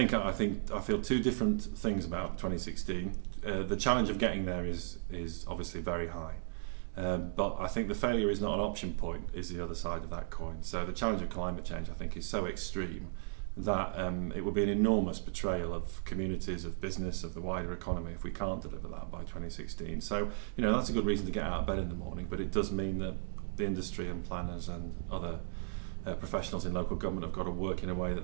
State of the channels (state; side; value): silent; left; digital silence